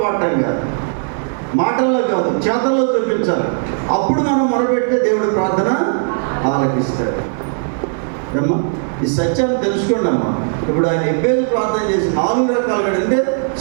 పాడటం కాదు, మాటల్లో కాదు, చేతల్లో చూపించాలి. అప్పుడు మనం మొరపెడితే దేవుడు ప్రార్థన ఆలకిస్తాడు. అమ్మా, ఈ సత్యాన్ని తెలుసుకోండి అమ్మా. ఇప్పుడు ఆయన ఎబ్బేజు ప్రార్థన చేసి 4 రకాలుగా, అంటే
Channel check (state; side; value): silent; left; digital silence